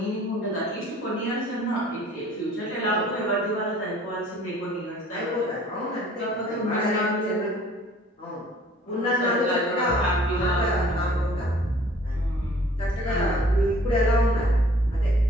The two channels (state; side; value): normal; both; correlation 0.54